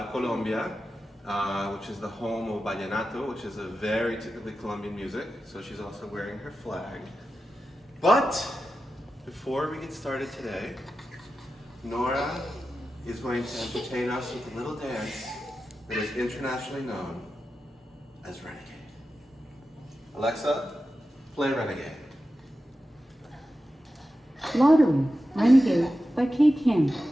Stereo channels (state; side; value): normal; both; correlation 0.92